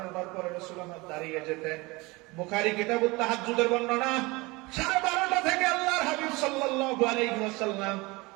পরে রাসূল আমার দাঁড়িয়ে যেতেন। বুখারী কিতাবুত তাহাজ্জুদের বর্ণনা, 12:30 থেকে আল্লাহর হাবিব সাল্লাল্লাহু আলাইহি ওয়াসাল্লাম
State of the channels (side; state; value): left; quieter; 23.8 dB